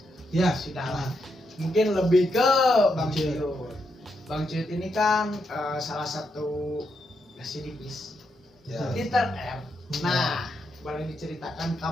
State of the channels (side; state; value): both; normal; correlation 0.81